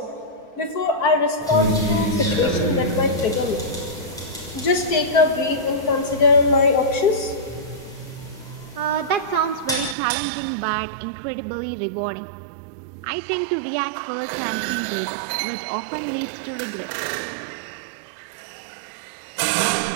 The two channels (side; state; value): left; drops out; at 10.0 s